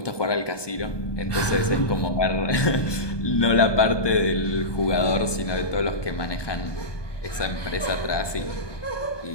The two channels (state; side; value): late; right; 1.2 ms